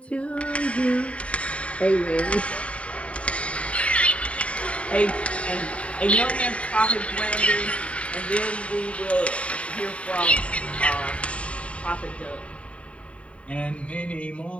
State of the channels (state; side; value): late; right; 0.063 ms